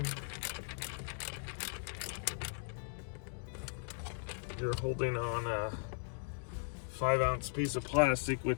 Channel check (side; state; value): right; silent; digital silence